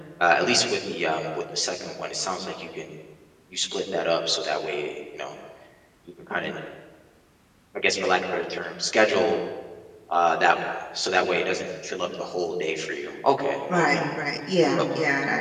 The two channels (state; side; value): identical; both; correlation 1.00